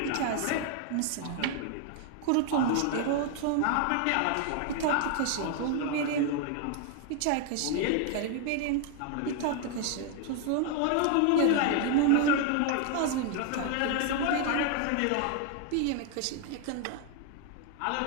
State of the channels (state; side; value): different; both; correlation 0.00